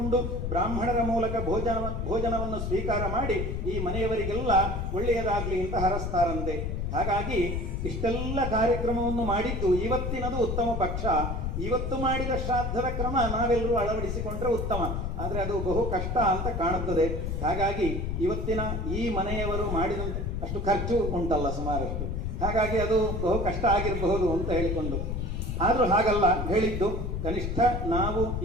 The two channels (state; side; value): noise; left; rumble, 2 dB below the sound